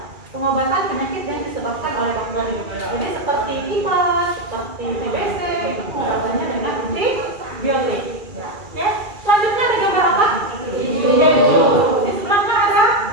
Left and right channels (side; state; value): left; late; 2.4 ms